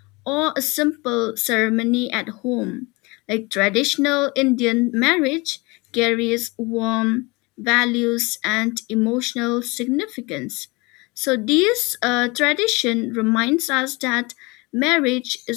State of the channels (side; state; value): right; quieter; 25.8 dB